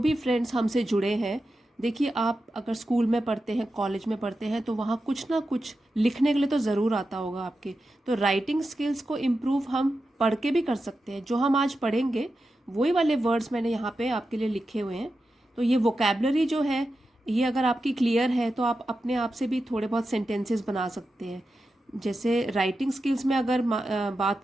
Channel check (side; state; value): both; normal; correlation 0.90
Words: फ्रेंड्स हमसे जुड़े हैं, देखिए आप अगर स्कूल में पढ़ते हैं, कॉलेज में पढ़ते हैं, तो वहाँ कुछ ना कुछ लिखने के लिए तो ज़रूर आता होगा आपके। तो राइटिंग स्किल्स को इम्प्रूव हम पढ़ के भी कर सकते हैं। जो हम आज पढ़ेंगे वही वाले वर्ड्स मैंने यहाँ पे आपके लिए लिखे हुए हैं। तो ये वोकेबलरी जो है, ये अगर आपकी क्लियर है तो आप अपने आप से भी थोड़े बहुत सेंटेंसेस बना सकते हैं। जैसे राइटिंग स्किल्स में अगर बात